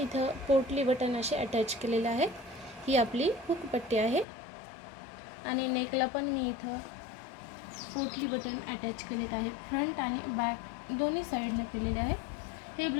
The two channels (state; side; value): drops out; right; at 4.2 s